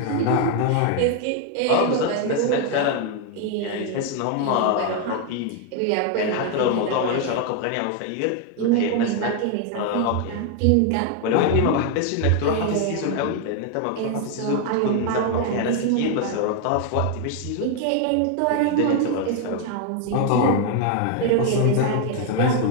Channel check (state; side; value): different; both; correlation 0.01